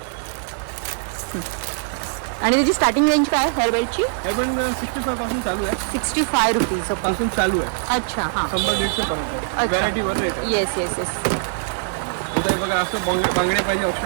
आणि त्याची स्टार्टिंग रेंज काय आहे हेअर बेल्टची? हेअर बँड 65 पासून चालू आहे. 65 रुपीज पासून चालू आहे. अच्छा हां 100-150 पर्यंत व्हरायटी वर रेट आहे. Yes yes yes. इथे बघा असं बांगडे पाहिजे,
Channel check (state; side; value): silent; left; digital silence